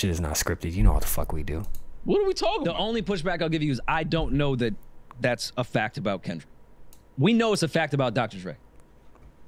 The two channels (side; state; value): both; identical; correlation 1.00